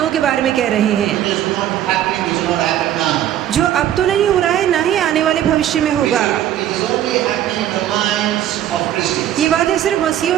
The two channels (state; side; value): quieter; left; 11.6 dB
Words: के बारे में कह रहे हैं, It is not happening, it is not happening now. जो अब तो नहीं हो रहा है, ना ही आने वाले भविष्य में होगा। It is only happening in the minds of Christians. ये बातें सिर्फ